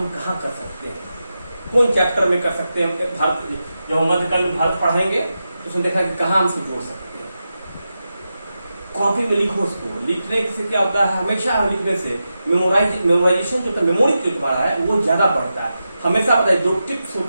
कहाँ कर सकते हैं, कौन चैप्टर में कर सकते हैं। भारत जब हम मध्यकाल में भारत पढ़ेंगे तो उसमें देखा कि कहाँ हम उसको जोड़ सकते हैं। कॉपी में लिखो उसको। लिखने से क्या होता है, हमेशा लिखने से मेमोराइजेशन जो मेमोरी जो तुम्हारा है वो ज्यादा बढ़ता है। हमेशा पता है जो टिप्स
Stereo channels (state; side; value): inverted; both; correlation -0.90